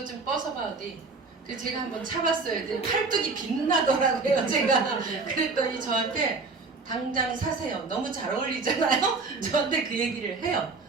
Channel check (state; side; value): quieter; left; 4.1 dB